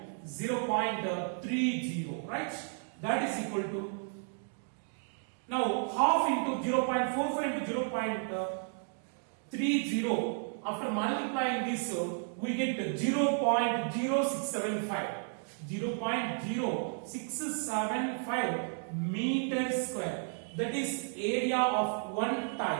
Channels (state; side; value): silent; left; 56 dB below the other